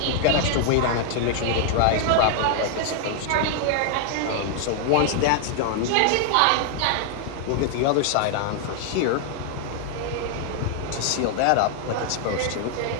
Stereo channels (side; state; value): both; different; correlation 0.00